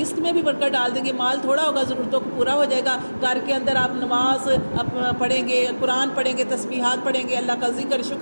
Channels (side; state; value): both; inverted; correlation -1.00